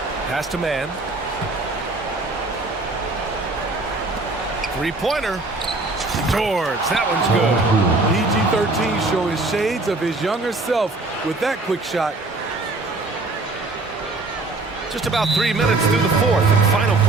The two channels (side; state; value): left; quieter; 3.2 dB